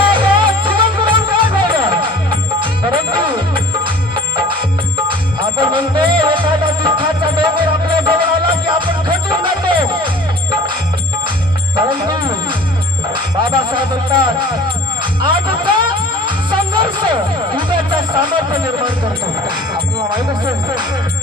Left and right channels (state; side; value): normal; both; correlation 0.46